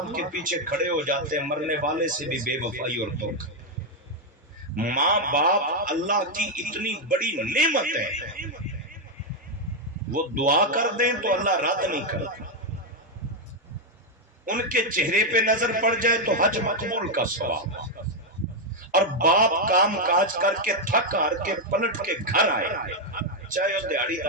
کے پیچھے کھڑے ہو جاتے ہیں. مرنے والے سے بھی بے وفائی اور دھوکہ. ماں باپ اللہ کی اتنی بڑی نعمت ہے, وہ دعا کر دیں تو اللہ رد نہیں کرتا. ان کے چہرے پہ نظر پڑ جائے تو حج مقبول کا ثواب. اور باپ کام کاج کر کے تھک ہار کے پلٹ کے گھر آئے, چاہے وہ دیہڑی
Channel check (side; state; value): both; normal; correlation 0.02